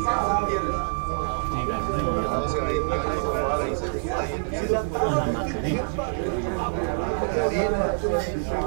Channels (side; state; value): left; silent; 58 dB below the other